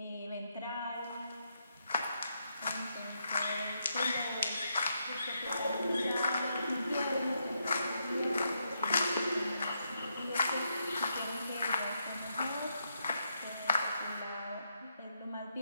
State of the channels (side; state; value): both; inverted; correlation -0.80